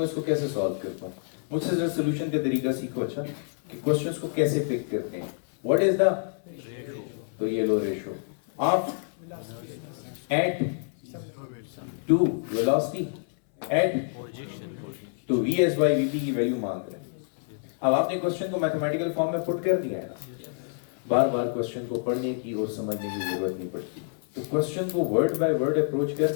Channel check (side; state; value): right; silent; 60 dB below the other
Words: इसको कैसे सॉल्व करता हूँ, मुझसे जरा सोल्यूशन का तरीका सीखो। अच्छा कि क्वेश्चंस को कैसे पिक करते हैं। व्हाट इज द, तो ये लो ratio of at to velocity at तो v s by v p की वैल्यू मांग रहे हैं। अब आपने क्वेश्चन को मैथमेटिकल फॉर्म में पुट कर दिया है ना, बार बार क्वेश्चन को पढ़ने की और समझने की जरूरत नहीं पड़ती। तो क्वेश्चन को वर्ड बाय वर्ड अप्रोच